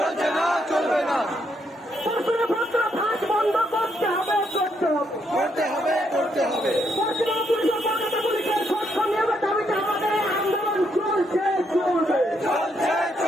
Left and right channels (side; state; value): both; normal; correlation 0.76